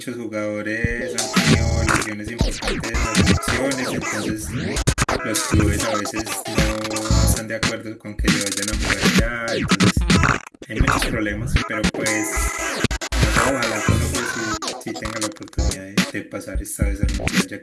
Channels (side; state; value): both; identical; correlation 1.00